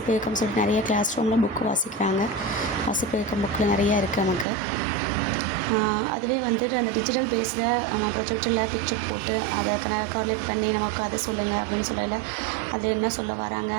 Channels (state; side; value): drops out; left; at 4.5 s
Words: இயக்கம் சொல்லிட்டு நிறைய கிளாஸ் ரூமில் புக்கு வாசிக்கிறாங்க. வாசிப்பு இயக்கம் புக்கில் நிறையா இருக்குது நமக்கு. அதுவே அந்த டிஜிட்டல் பேஸில் நம்ம ப்ரொஜெக்டரில் பிக்சர் போட்டு அதை கார்லேட் பண்ணி நமக்கு அதை சொல்லுங்கள் அப்படின்னு சொல்லல, அது என்ன சொல்ல வராங்க